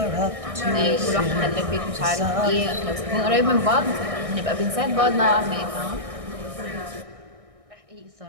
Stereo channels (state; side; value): late; left; 1.6 ms